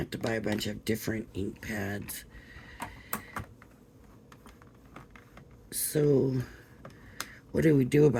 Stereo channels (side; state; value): both; identical; correlation 1.00